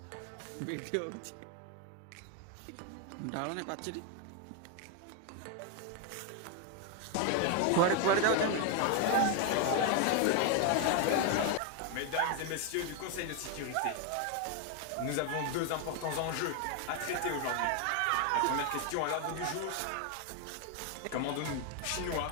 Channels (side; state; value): both; different; correlation 0.00